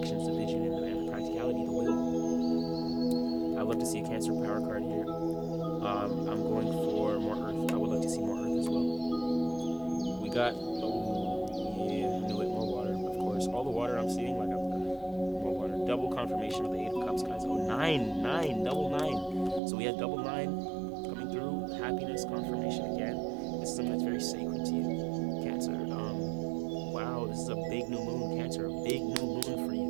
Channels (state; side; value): drops out; left; at 19.6 s